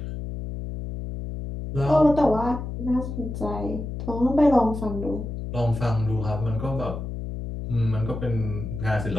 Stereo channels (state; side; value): noise; left; hum, 6 dB below the sound